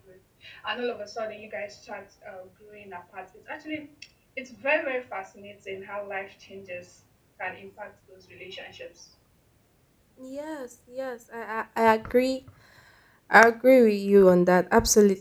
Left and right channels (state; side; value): identical; both; correlation 1.00